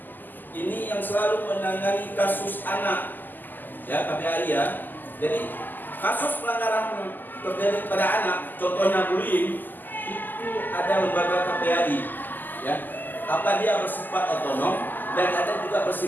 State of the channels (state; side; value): late; right; 0.088 ms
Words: Ini yang selalu menangani kasus anak. Ya, KPAI ya. Jadi kasus pelanggaran terjadi pada anak, contohnya bullying, itu ada lembaga KPAI. Ya, apa dia bersifat otonom dan ada juga